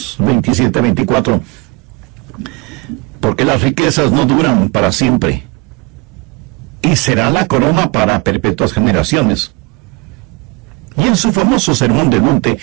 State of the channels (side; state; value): left; quieter; 25.1 dB